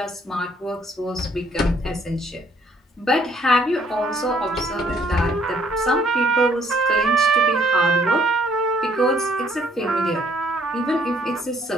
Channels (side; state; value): both; normal; correlation 0.64